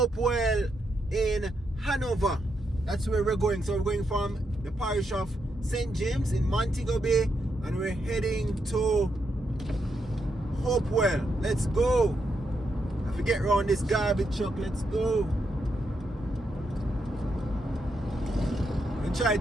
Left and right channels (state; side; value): normal; both; correlation 0.81